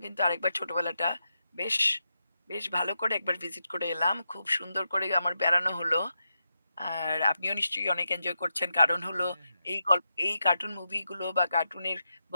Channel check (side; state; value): both; inverted; correlation -0.85